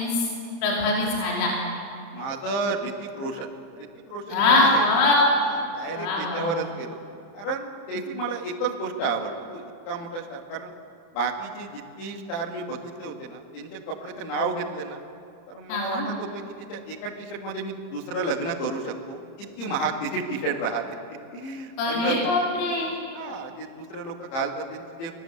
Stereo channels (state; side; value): late; right; 30 ms